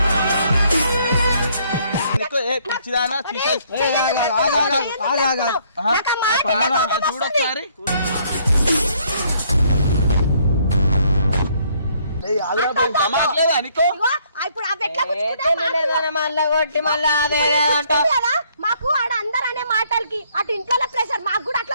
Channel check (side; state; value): both; inverted; correlation -0.66